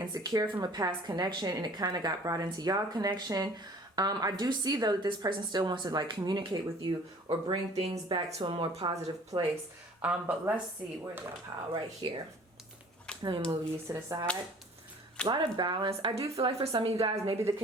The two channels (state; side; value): normal; both; correlation 0.50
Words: from a past connection and it kind of got brought into y'all connection. I do see though that this person still wants to like communicate with you or bring things back to a more positive place. But let's see, where's that pile? Right here. Let me move these to the side. A lot of balance. I do feel like for some of you guys, maybe the